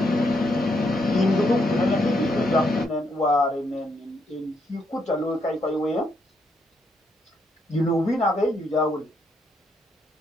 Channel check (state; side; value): normal; both; correlation 0.77